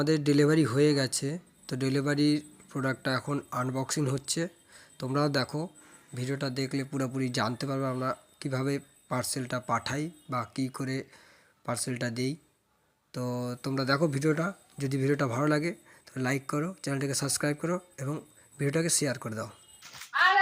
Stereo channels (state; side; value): identical; both; correlation 1.00